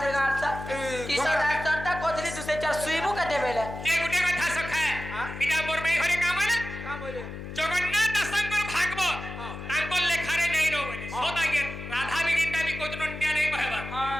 থেকে গাড়ছা কিসর ডাক্তারটা কতলি দুসে চার সুইবু কাটে বেলে যে গুটে কথা সখা এটা মোর মেয়ে ঘরে কাম না জগন্নাথ দাসঙ্কর ভাগবত তাঙ্কর লেখারে নাই নো বলে সদাগে রাধা বিগিনটা বি কোতন নিয়া নাই কহেবা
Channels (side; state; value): left; noise; hum, 9 dB below the sound